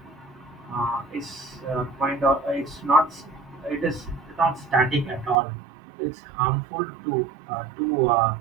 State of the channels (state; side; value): drops out; left; at 5.4 s